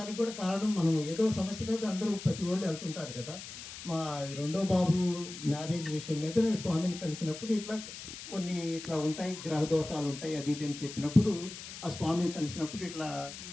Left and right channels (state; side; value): noise; left; hiss, 11 dB below the sound